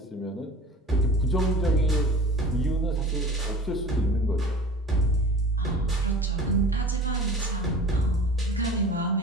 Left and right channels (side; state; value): both; normal; correlation 0.41